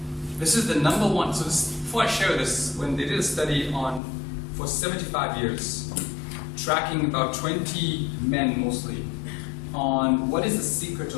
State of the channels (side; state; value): right; drops out; at 4.0 s